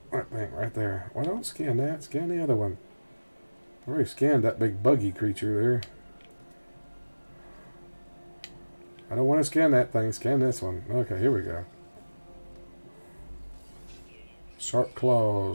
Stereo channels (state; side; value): inverted; both; correlation -1.00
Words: That thing right there. Well, don't scan that. Scan the other one. I already scanned that big buggy creature there. I don't want to scan that thing. Scan this one. Okay, here we go. Sharp